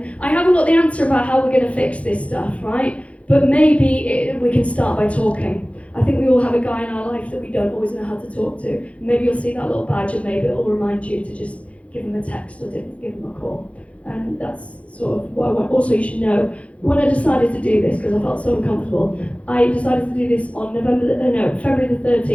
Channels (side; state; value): right; late; 0.063 ms